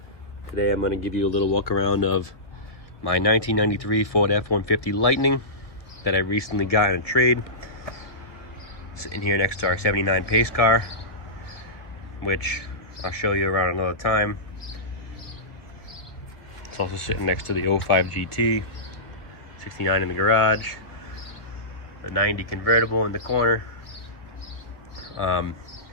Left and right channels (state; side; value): late; right; 1.7 ms